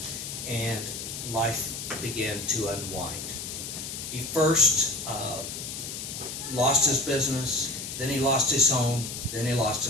and life began to unwind. He first lost his business, then he lost his home, then he lost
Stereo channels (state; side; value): noise; left; hiss, 7 dB below the sound